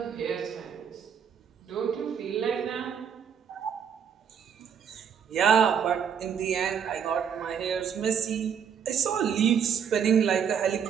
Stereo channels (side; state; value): left; quieter; 7.7 dB